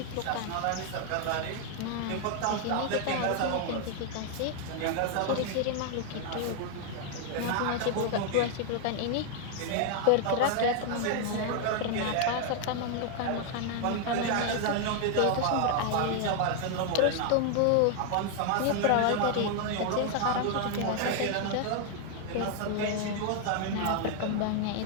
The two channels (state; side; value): different; both; correlation 0.00